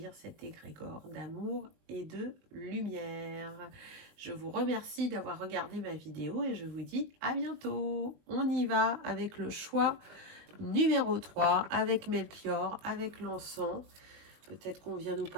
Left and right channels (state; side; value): late; left; 20 ms